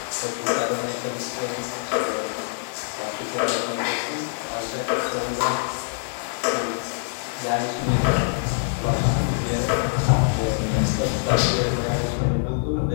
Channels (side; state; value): right; silent; digital silence